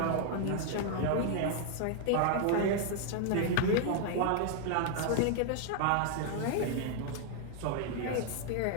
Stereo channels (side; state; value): both; different; correlation 0.00